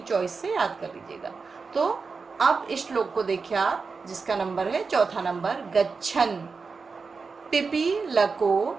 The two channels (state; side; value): quieter; left; 4.8 dB